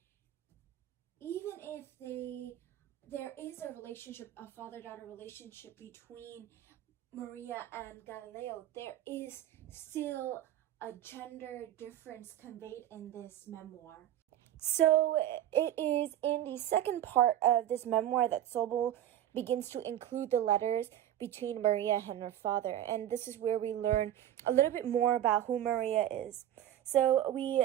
even if there is a relationship, a father-daughter relationship between Maria and Galileo, there is still a gender difference conveyed in this memoir. So it is in the second part of this memoir that Sobel begins to include the letters between Maria and her father, and this is where we learn a little bit more about who Maria is. So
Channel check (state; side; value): quieter; left; 11.8 dB